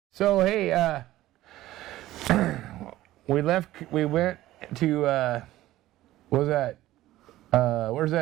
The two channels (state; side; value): quieter; left; 15.5 dB